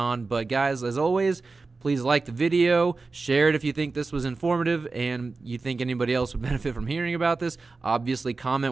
But guys, as always, please like the video, share it if you think this was informative and you think anybody else would benefit from hearing about this. Obviously, comment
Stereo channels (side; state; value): left; quieter; 3.9 dB